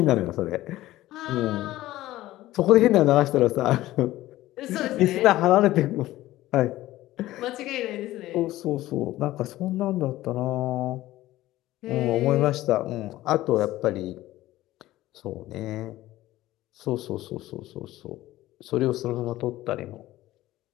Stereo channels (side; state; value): right; quieter; 16.0 dB